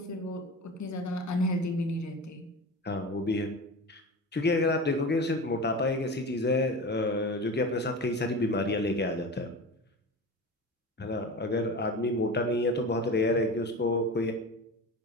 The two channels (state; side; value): normal; both; correlation 0.31